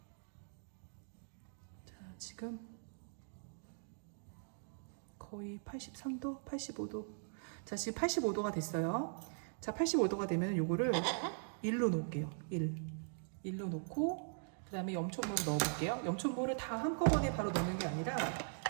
자, 지금 거의 83도, 85도. 자, 지금 85도가 됐어요. 자, 85도가 되면 요거를 1로 놓을게요. 1로 놓고 그 다음에 염초물을 넣어볼게요. 염초물을 다 한꺼번에 바로 넣는 게 아니라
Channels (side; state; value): left; silent; digital silence